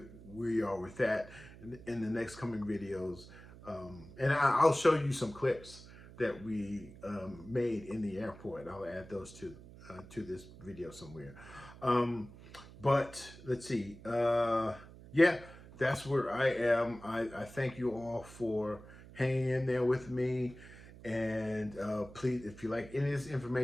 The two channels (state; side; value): noise; right; hum, 18 dB below the sound